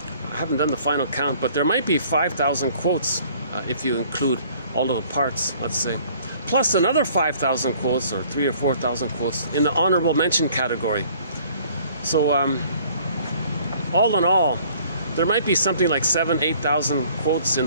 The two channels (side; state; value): both; inverted; correlation -0.56